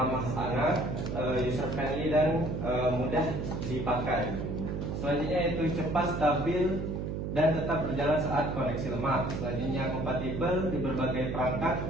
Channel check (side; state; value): right; noise; hum, 3 dB below the sound